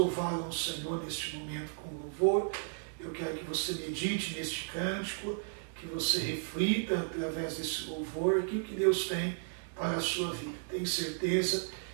ao Senhor neste momento com louvor. Eu quero que você medite neste cântico, que você reflita através desse louvor aquilo que Deus tem para a sua vida. Tenho certeza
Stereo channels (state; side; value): silent; left; digital silence